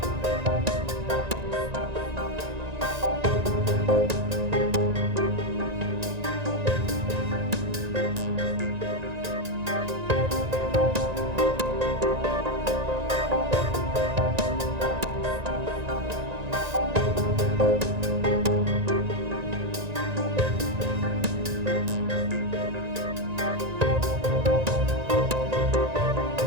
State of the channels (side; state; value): left; late; 1.9 ms